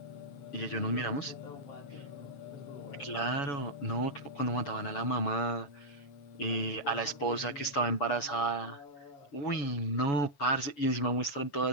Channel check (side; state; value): right; late; 7.0 ms